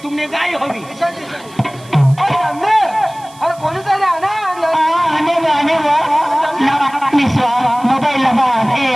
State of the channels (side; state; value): right; noise; hiss, 24 dB below the sound